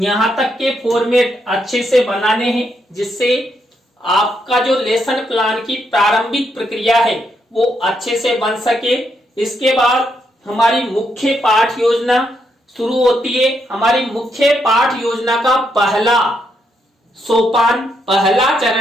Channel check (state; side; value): normal; both; correlation 0.78